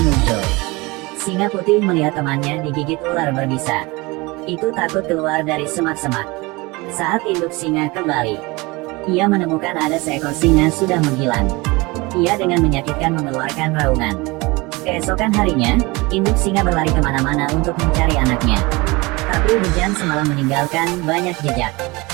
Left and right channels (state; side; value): quieter; left; 24.0 dB